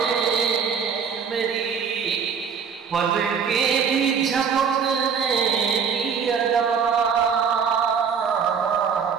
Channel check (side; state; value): left; quieter; 6.6 dB